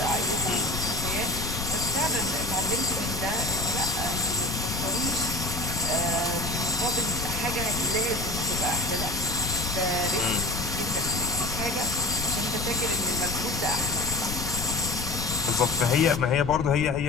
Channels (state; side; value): noise; left; rumble, 6 dB below the sound